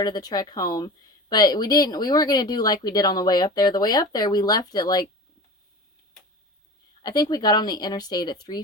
the trek home, but we weren't going to do like we did on the way up there. The way up there we left at like, I think we got on the interstate at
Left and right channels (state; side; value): normal; both; correlation 0.33